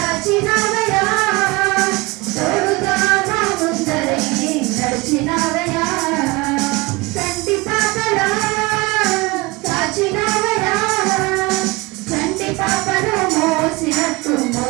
తోడుగా మా ముందరే నడిచినవయా చంటి పాపలా కాచినవయా చంటి పాపను మోసినట్టు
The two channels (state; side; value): quieter; left; 24.1 dB